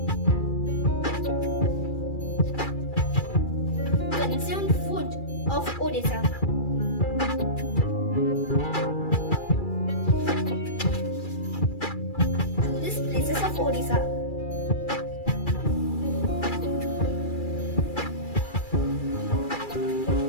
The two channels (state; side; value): late; right; 2.3 ms